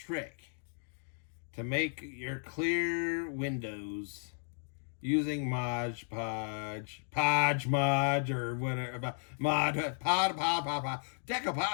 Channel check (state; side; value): silent; right; digital silence